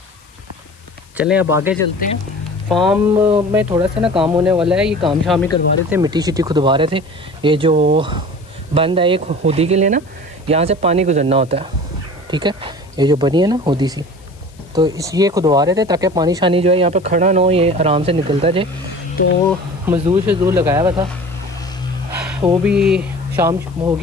चलें अब आगे चलते हैं। फार्म में थोड़ा सा ना काम होने वाला है, ये काम शाम ही करवा रहे थे, मिट्टी शिट्टी खुदवा रहे थे। ये जो बंद है एक होदी के लिए ना, यहाँ से पानी गुजरना होता है, ठीक है, ये जो बनी है ना होदी सी, तो इस ये खुदवा रहे थे ताकि पानी शानी जो है यहाँ पे खड़ा ना हो, ये आराम से निकलता जाए। तो मजदूर लगाया हुआ था, वो भी शाम हो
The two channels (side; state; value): left; noise; hiss, 29 dB below the sound